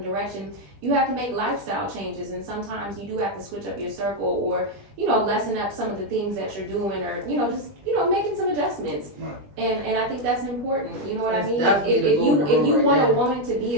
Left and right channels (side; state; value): left; late; 20 ms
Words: direction, you have to make lifestyle changes. And sometimes you do have to switch up your circle or, lessen up some of the things that you're doing or, just, making some adjustments. Right. And I think that's important. You know what I That's mean? definitely the If you golden rule want right a there. woman to be